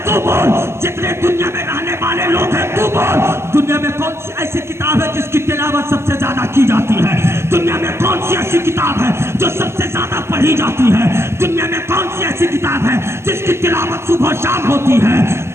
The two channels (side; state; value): left; late; 0.13 ms